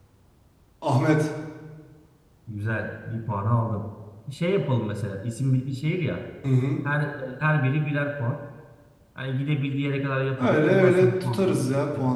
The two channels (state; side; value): identical; both; correlation 1.00